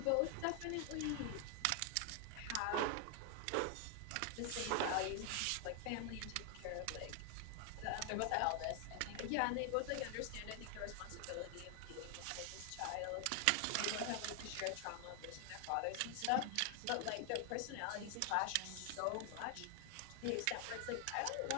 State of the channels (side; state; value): both; different; correlation 0.00